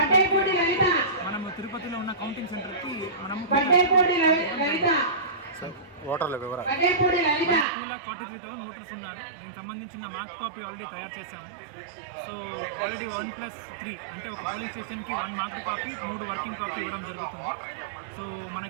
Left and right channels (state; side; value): drops out; left; at 7.7 s